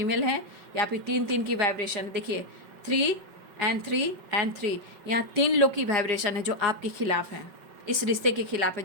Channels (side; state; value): left; late; 5.3 ms